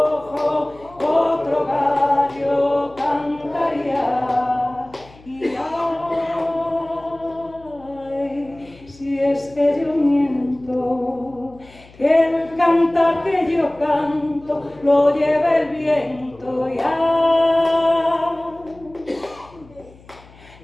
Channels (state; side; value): noise; left; hum, 24 dB below the sound